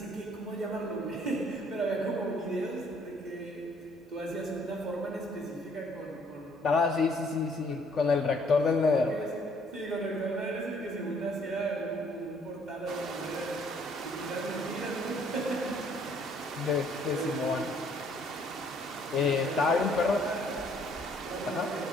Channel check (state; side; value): normal; both; correlation 0.62